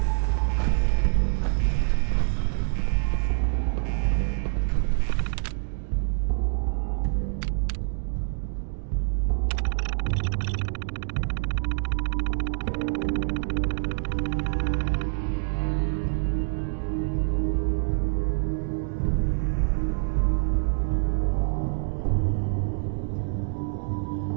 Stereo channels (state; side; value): silent; left; digital silence